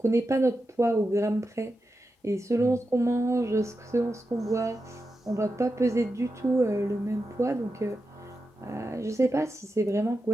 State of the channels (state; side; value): normal; both; correlation 0.89